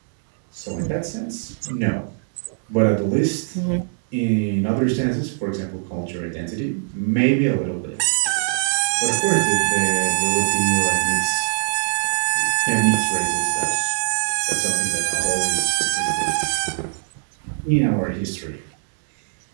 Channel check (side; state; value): left; silent; digital silence